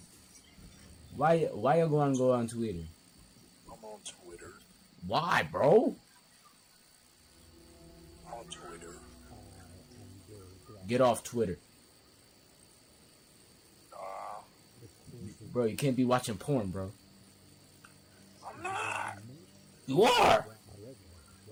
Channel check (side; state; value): both; identical; correlation 1.00